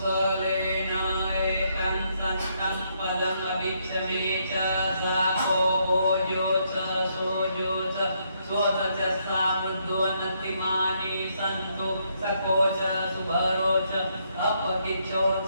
एकं सन्तं पदम् अभिक्षमे च साको भोजो च सोजो च स्वत च सावृद्धवन्नतिमानि सन्तु सको च सुभरो च अपकिचो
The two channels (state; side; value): inverted; both; correlation -0.74